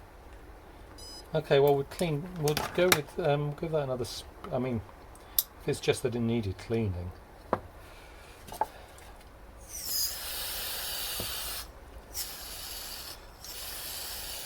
Okay, well we'll go with give that another. I mean, if it's just that it needed cleaning.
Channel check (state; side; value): identical; both; correlation 1.00